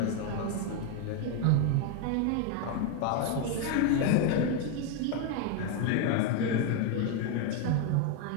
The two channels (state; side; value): different; both; correlation 0.01